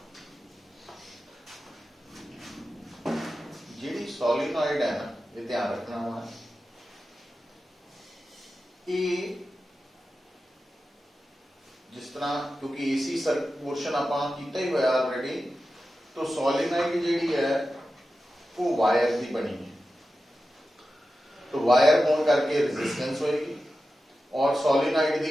ਜਿਹੜੀ ਸੋਲਿਨੋਇਡ ਹੈ ਨਾ ਇਹ ਧਿਆਨ ਰੱਖਣਾ ਵਾ ਇਹ ਜਿਸ ਤਰ੍ਹਾਂ ਕਿਉਂਕਿ ਏਸੀ ਸਰ ਪੋਰਸ਼ਨ ਆਪਾਂ ਕੀਤਾ ਹੀ ਹੋਇਆ ਆਲਰੇਡੀ तो ਸੋਲਿਨੋਇਡ ਜਿਹੜੀ ਹੈ ਉਹ ਵਾਇਰ ਦੀ ਬਣੀ ਹੈ तो ਵਾਇਰ ਹੋਣ ਕਰਕੇ ਰੈਜ਼ਿਸਟੈਂਸ ਹੋਏਗੀ और सोलिनॉइड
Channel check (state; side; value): normal; both; correlation 0.93